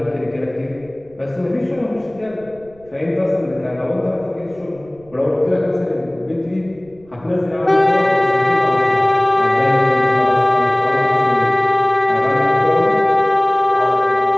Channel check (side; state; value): right; noise; rumble, 27 dB below the sound